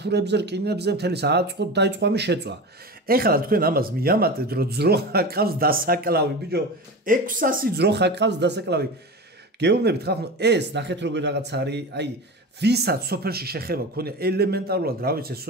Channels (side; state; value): both; normal; correlation 0.28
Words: რკინებზე, მთელი სააწყოთ დაიწყო ამის შეწვა. ეხლა თქვენ ამას მიამატეთ, რომ ძროხა ყავს დასაკლავი, ბიჭო, 600 ძროხა ყავს დასაკლავი. გეუბნებით ხალხო, ეს ნახეთ როგორ რაღაც არის, აი, ვისაც სოფელში შეხება ქონია ელემენტარულად, რა